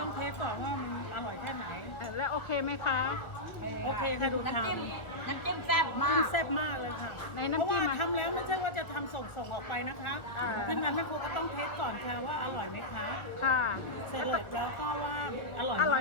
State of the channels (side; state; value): right; late; 1.5 ms